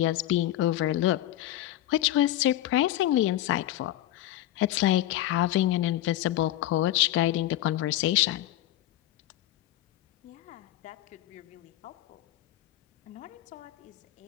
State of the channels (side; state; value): right; quieter; 14.1 dB